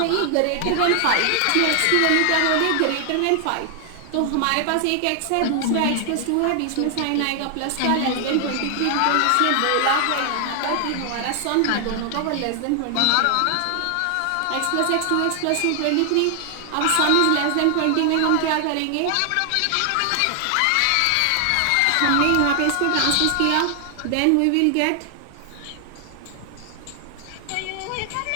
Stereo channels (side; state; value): both; different; correlation 0.00